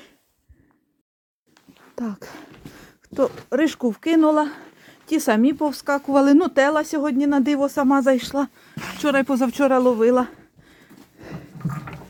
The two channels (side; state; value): both; identical; correlation 1.00